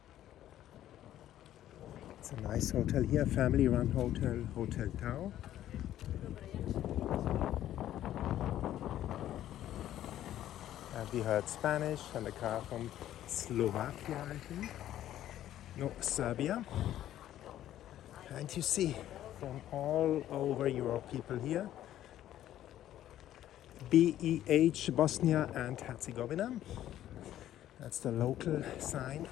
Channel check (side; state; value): right; quieter; 12.4 dB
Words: It's a nice hotel here, family-run hotel, Hotel Tau. And we heard Spanish and a car from Slovakia, I think. No, Serbia. And you see from all over Europe people here. BEH, Bosnia and Herzegovina. That's the local sign